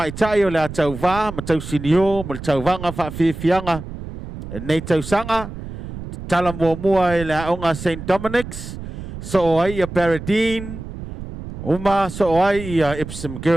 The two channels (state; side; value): noise; right; rumble, 10 dB below the sound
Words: tai o le tau va ma tau sinio mo tau vanga fa fianga nei tau sanga tala mua e le aonga St. Dominic's, so ai a Paradine, uma so ai a Epsom